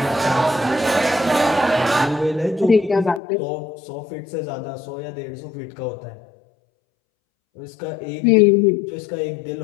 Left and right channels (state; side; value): drops out; right; at 3.2 s